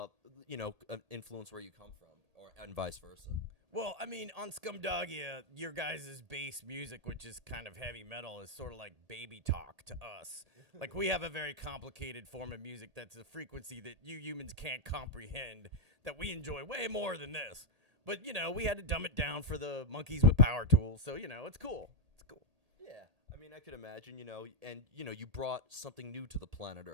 influence where you come from, and vice versa? Well, I mean, on Scumdogia, your guys' bass music, which is kind of heavy metal, is sort of like baby talk to us. Like, we have a very complicated form of music that's a frequency that you humans can't comprehend, that we enjoy way more than this. But, you know, we had to dumb it down for the monkeys with power tools, so, you know, it's cool. It's cool. Yeah. I mean, I could imagine, you know, and, you know, you brought something new to the planet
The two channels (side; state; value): left; late; 1.8 ms